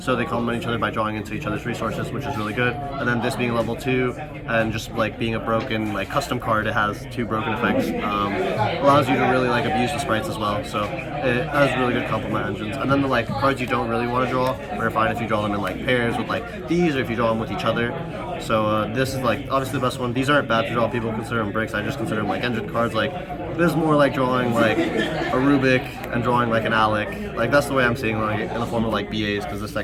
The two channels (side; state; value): both; identical; correlation 1.00